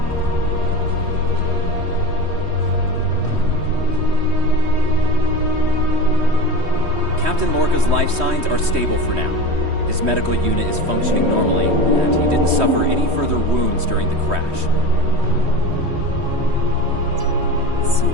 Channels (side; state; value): left; late; 3.2 ms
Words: Captain Lorca's life signs are stable for now. His medical unit is functioning normally, and he didn't suffer any further wounds during the crash.